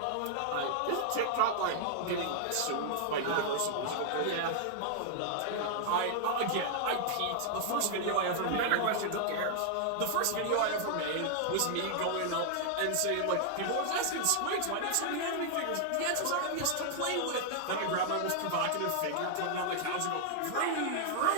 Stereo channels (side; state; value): both; different; correlation -0.01